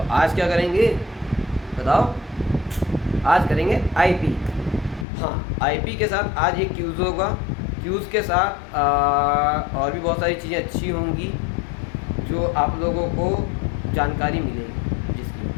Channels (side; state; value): right; drops out; at 5.1 s